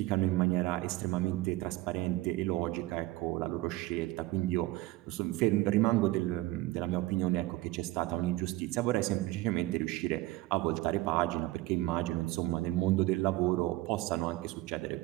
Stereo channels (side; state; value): left; quieter; 18.5 dB